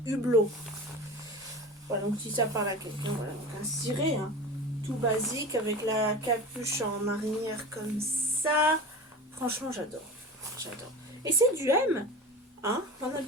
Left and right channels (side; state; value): both; normal; correlation 0.31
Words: Hublot. Voilà, donc si ça parle à quelqu'un, voilà, donc un ciré, hein, tout basique, avec la capuche en marinière comme ça. Franchement, j'adore. J'adore. Et c'est du M, hein. En